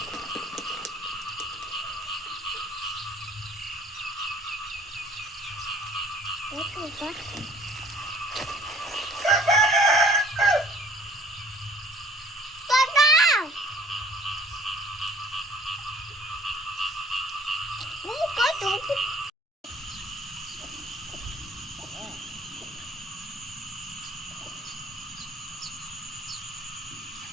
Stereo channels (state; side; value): normal; both; correlation 0.54